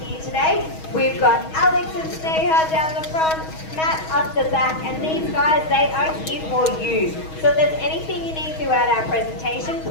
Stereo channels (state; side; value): late; right; 6.3 ms